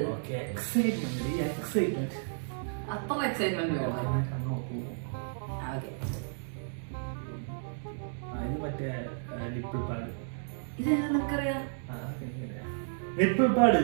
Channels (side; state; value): left; silent; digital silence